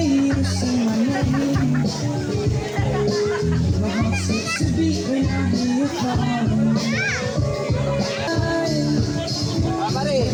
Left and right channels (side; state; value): both; identical; correlation 1.00